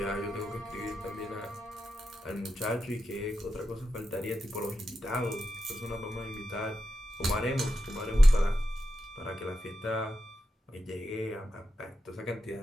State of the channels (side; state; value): both; normal; correlation 0.89